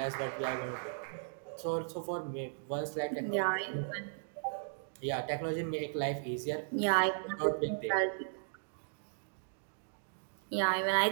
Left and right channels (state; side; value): silent; left; digital silence